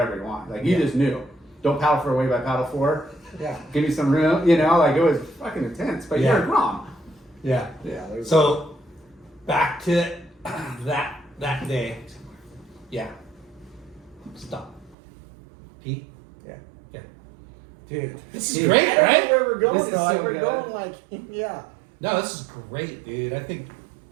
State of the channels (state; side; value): drops out; left; at 15.0 s